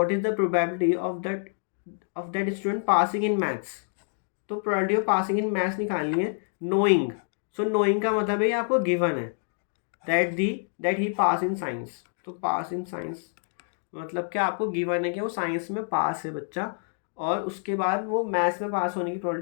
is the probability of that student passing in maths. तो probability of passing in maths निकालनी है नोइंग। सो नोइंग का मतलब है ये आपको गिवन है that he pass in science. तो पास इन साइंस मतलब क्या? आपको गिवन है कि वो साइंस में पास है बच्चा, और उसके बाद वो मैथ्स में पास होने की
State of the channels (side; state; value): right; silent; 60 dB below the other